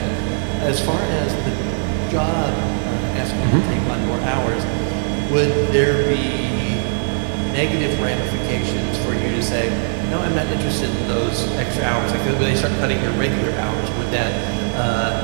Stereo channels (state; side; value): silent; left; digital silence